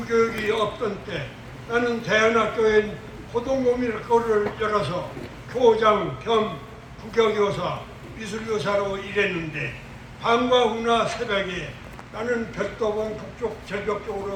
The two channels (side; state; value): both; identical; correlation 1.00